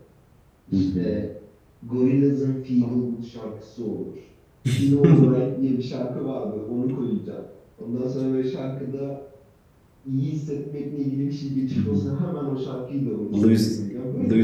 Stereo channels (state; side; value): identical; both; correlation 1.00